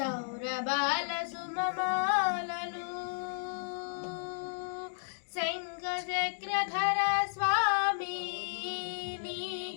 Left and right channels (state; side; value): silent; right; digital silence